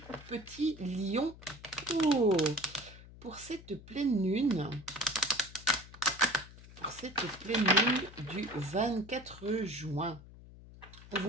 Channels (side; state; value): left; noise; hum, 18 dB below the sound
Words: petits lions. Oh, pour cette pleine lune, du 24 juin. On